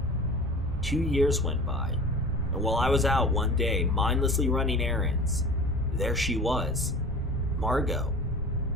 2 years went by, and while I was out one day mindlessly running errands, there she was, Margot.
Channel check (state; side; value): normal; both; correlation 0.39